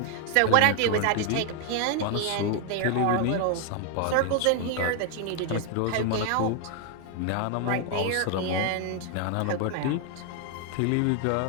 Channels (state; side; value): different; both; correlation 0.00